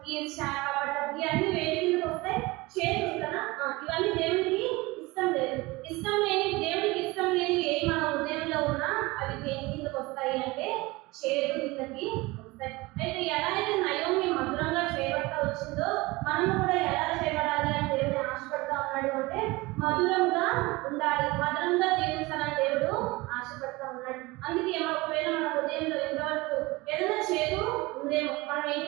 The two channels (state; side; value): quieter; left; 22.2 dB